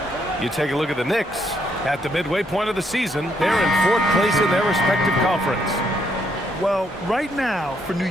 You take a look at the Knicks. At the midway point of the season, they're in 4th place in their respective conference. Well, right now for New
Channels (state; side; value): normal; both; correlation 0.73